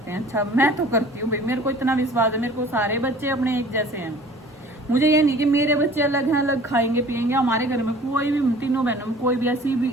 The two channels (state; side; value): normal; both; correlation 0.47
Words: हैं। अच्छा मैं तो करती हूँ भाई, मेरे को इतना विश्वास है, मेरे को सारे बच्चे अपने एक जैसे हैं। मुझे ये नहीं कि मेरे बच्चे अलग हैं, अलग खाएंगे पिएंगे। हमारे घर में कोई भी, तीनों बहनों में कोई भी ऐसी भी